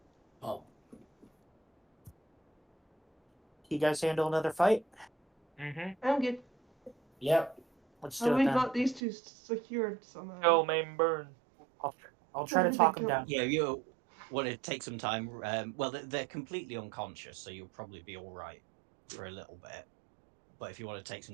Oh, You guys handle another fight? Mm-hmm. I'm good. Yep. Let's do And it we then. got these two secured somehow. Go, main burn. I'll try to talk them Go. down. Yeah, you want to take some time. Well, they're completely unconscious, so you'll probably be all right for a little bit. But if you want to take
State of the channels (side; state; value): left; drops out; at 9.0 s